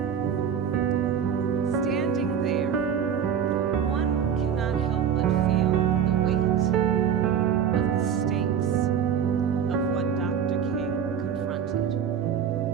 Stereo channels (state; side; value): quieter; left; 8.0 dB